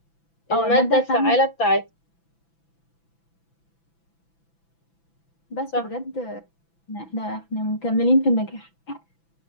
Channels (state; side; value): late; right; 6.0 ms